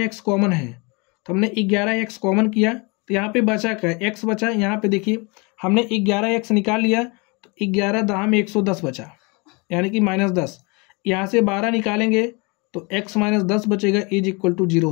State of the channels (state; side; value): quieter; right; 29.4 dB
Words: कॉमन है, तो हमने 11x कॉमन किया तो यहाँ पे बचा क्या, x बचा। यहाँ पे देखिए हमने 11x निकाल लिया तो 11 दहा में 110 बचा, यानी कि -10। यहाँ से 12 निकालेंगे तो x - 10 बचेगा, इज इक्वल टू 0